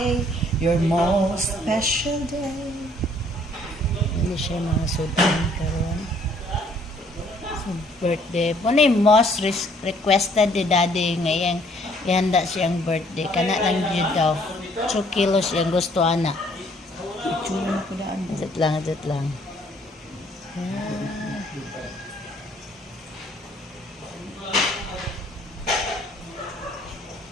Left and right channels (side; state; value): both; normal; correlation 0.62